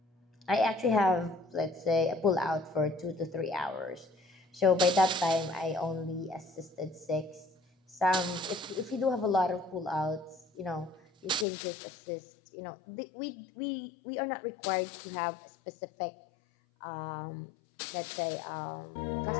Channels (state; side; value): drops out; right; at 11.5 s